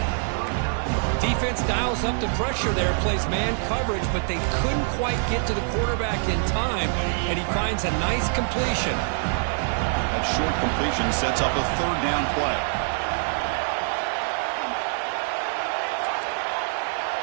Defense dials up the pressure there, plays man coverage, but they couldn't quite get to the quarterback in time, and he finds a nice completion. That short completion sets up a 3rd down play.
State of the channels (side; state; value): left; silent; 62 dB below the other